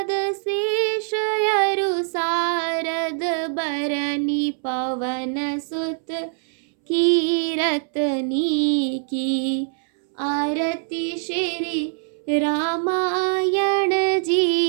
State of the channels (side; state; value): left; silent; 64 dB below the other